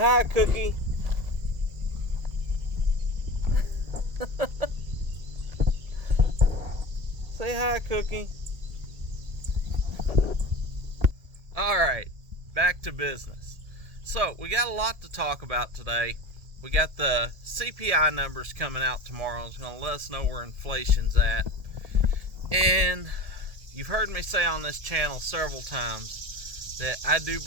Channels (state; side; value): late; left; 1.7 ms